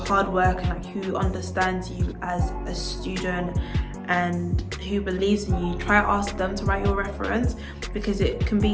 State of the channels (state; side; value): identical; both; correlation 1.00